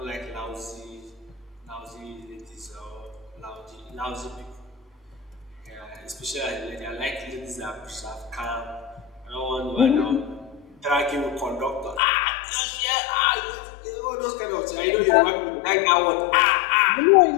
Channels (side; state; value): right; drops out; at 12.0 s